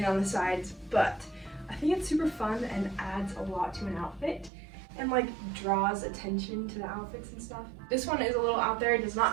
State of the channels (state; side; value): drops out; left; at 4.5 s